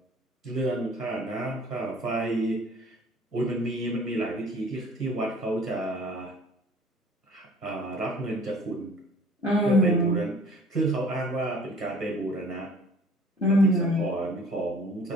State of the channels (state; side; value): normal; both; correlation 0.51